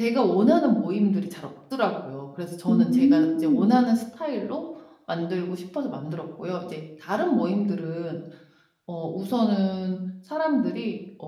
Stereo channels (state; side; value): identical; both; correlation 1.00